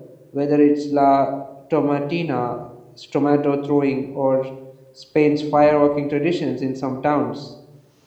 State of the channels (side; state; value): both; identical; correlation 1.00